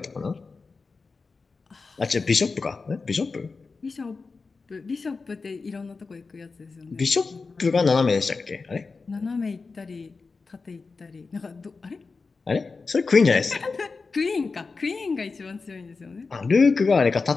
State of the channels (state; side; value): quieter; right; 4.3 dB